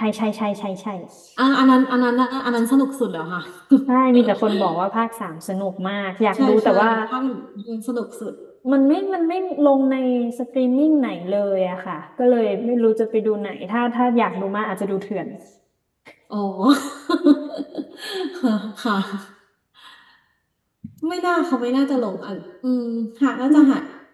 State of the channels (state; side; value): identical; both; correlation 1.00